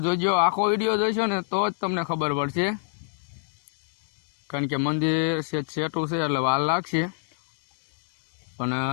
જોજો, આખો વિડીયો જોઈશો ને તો જ તમને ખબર પડશે, કારણ કે મંદિર સેટું છે એટલે વાર લાગશે. પણ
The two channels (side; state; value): right; silent; digital silence